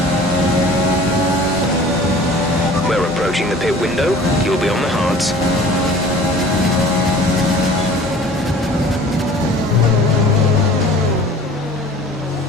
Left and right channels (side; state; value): both; normal; correlation 0.46